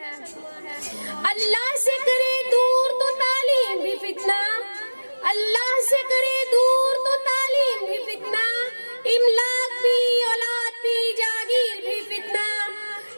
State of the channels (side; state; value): both; inverted; correlation -1.00